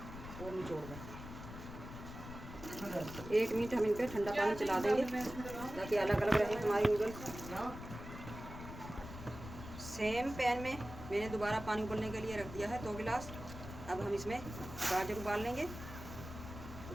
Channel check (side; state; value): left; noise; rumble, 11 dB below the sound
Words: और निचोड़ दें। 1 मिनट हम इन पर ठंडा पानी चला देंगे ताकि अलग अलग रहे हमारी नूडल्स। सेम पैन में मैंने दोबारा पानी उबलने के लिए रख दिया है 2 गिलास। अब हम इसमें गाजर उबाल लेंगे।